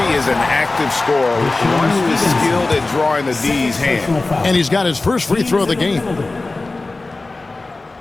is an active scorer, one who is skilled at drawing the D's hand. And he's got his first free throw of the game.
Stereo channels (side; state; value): right; quieter; 3.3 dB